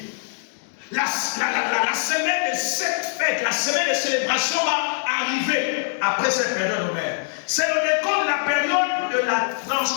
La semaine de cette fête, la semaine de célébration va arriver après cette période Homère. C'est le décor de la période de la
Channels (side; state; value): right; silent; digital silence